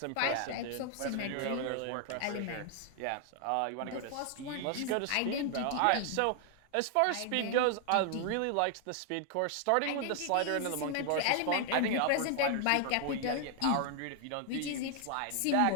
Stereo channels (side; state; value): both; different; correlation 0.00